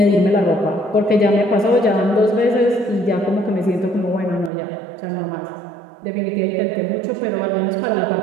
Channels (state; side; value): drops out; left; at 4.5 s